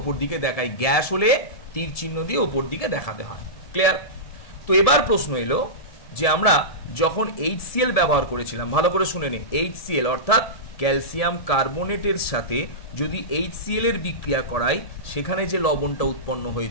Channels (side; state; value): right; late; 1.7 ms